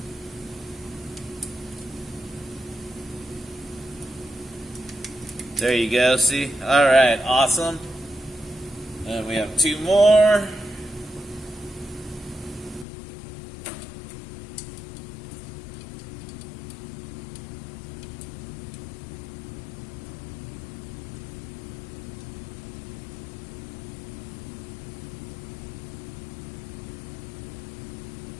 There you go, see? Alright, awesome. And we have two more.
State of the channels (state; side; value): drops out; right; at 12.9 s